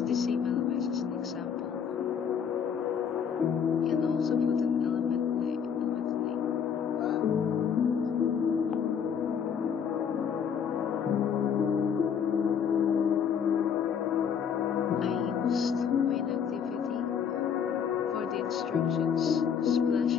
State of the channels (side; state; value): right; quieter; 7.5 dB